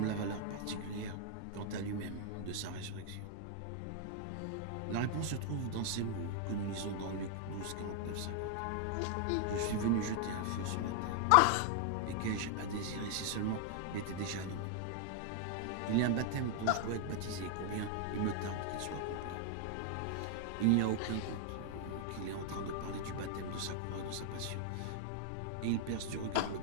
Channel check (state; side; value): different; both; correlation 0.00